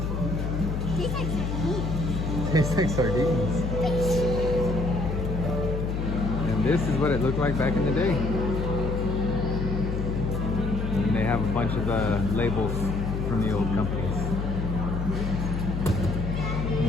Tastes like sardines. Tastes like sardines. And this is what it looked like back in the day. And they have a bunch of labels from the old companies.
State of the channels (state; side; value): noise; left; hum, 2 dB below the sound